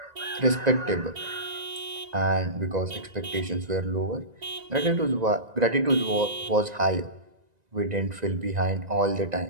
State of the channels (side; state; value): left; late; 1.9 ms